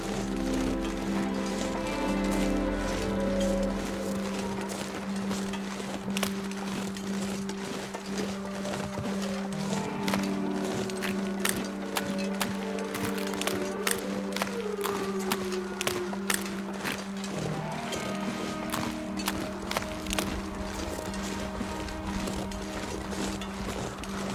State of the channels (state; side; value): identical; both; correlation 1.00